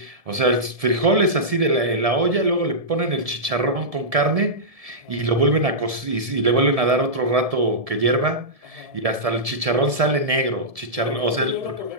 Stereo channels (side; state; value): left; late; 1.7 ms